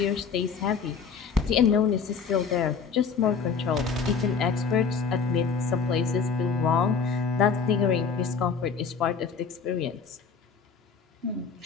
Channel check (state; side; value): quieter; right; 5.8 dB